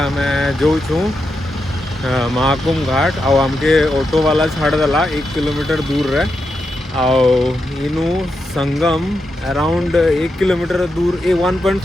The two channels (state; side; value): normal; both; correlation 0.86